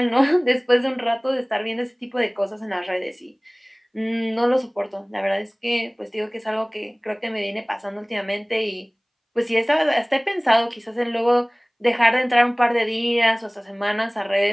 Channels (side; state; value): both; identical; correlation 1.00